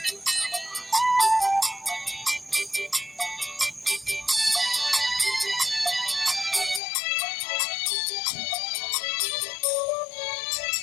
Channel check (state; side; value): drops out; right; at 6.8 s